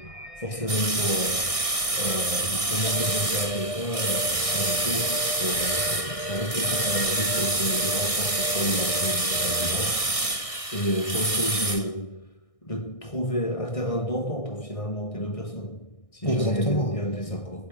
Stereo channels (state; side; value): late; right; 1.6 ms